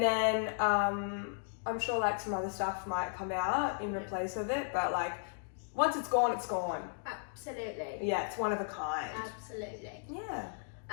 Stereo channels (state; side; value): silent; right; digital silence